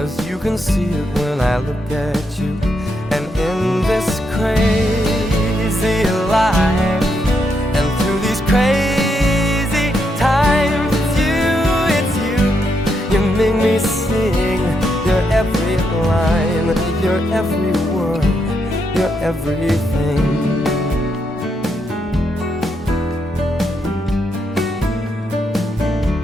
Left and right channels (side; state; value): both; normal; correlation 0.80